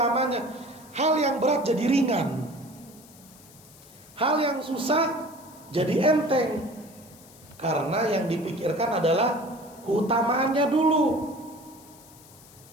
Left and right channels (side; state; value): left; noise; hiss, 23 dB below the sound